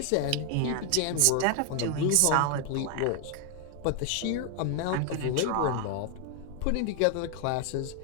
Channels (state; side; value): different; both; correlation 0.00